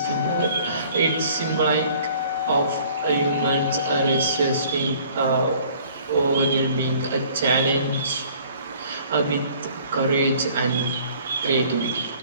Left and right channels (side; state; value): both; inverted; correlation -0.54